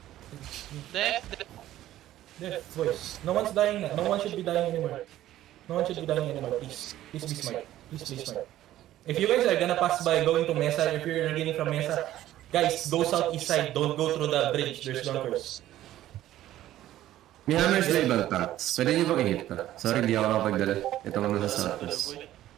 Death. Death, boys. No one's dying na. No one should be dying anymore. Please be smart. If you guys are gonna pass by going to Mesa, if you're getting from Mesa, guys, go southeast side. Don't go through the bridge. There's bunkers. May hammers na ibang tanks. Pwede niyo bang i-hit ko? Sorry, hindi ako nakapagdala. Ito ko nasa southeast.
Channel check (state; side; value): quieter; left; 13.7 dB